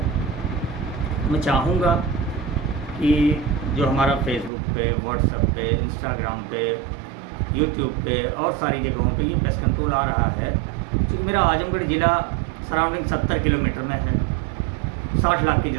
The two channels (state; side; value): drops out; left; at 4.5 s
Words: मैं चाहूँगा कि जो हमारा फेसबुक पे, व्हाट्सएप पे, इंस्टाग्राम पे, यूट्यूब पे और सारी जगहों पे ये पेस्ट कंट्रोल आ रहा है। क्योंकि मेरा आजमगढ़ ज़िला सराउंडिंग 70 किलोमीटर में है, 60 लाख की